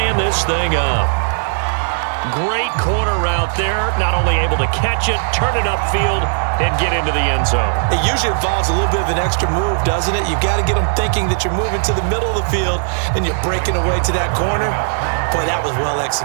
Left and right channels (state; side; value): silent; left; digital silence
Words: this thing up. Great corner route there. Not only able to catch it, turn it upfield, and get into the end zone. It usually involves a little bit of an extra move, doesn't it? You've got to get them thinking that you're moving to the middle of the field and you're breaking away to that corner. Boy, that was well